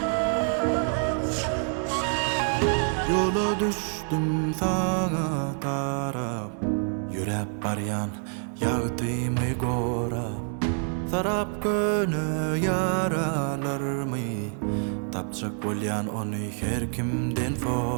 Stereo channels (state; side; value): silent; left; 55 dB below the other